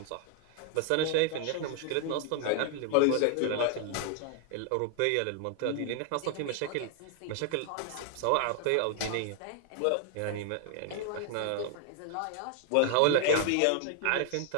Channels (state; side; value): different; both; correlation 0.00